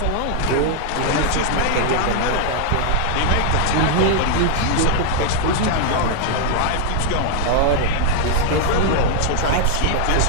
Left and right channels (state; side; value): different; both; correlation 0.00